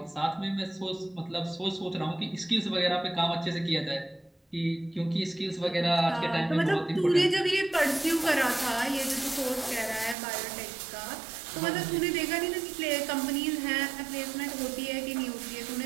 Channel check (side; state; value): left; drops out; at 10.2 s